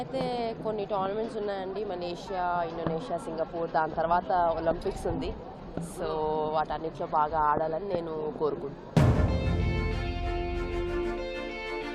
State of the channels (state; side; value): identical; both; correlation 1.00